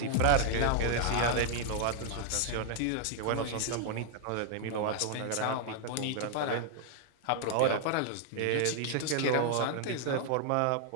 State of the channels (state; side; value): different; both; correlation 0.00